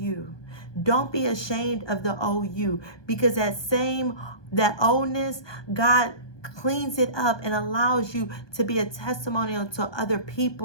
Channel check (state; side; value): late; right; 1.2 ms